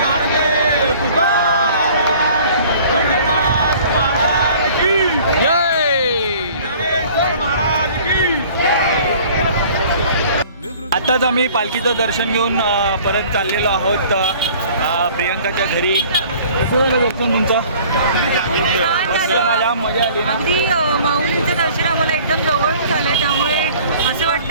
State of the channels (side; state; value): both; inverted; correlation -0.50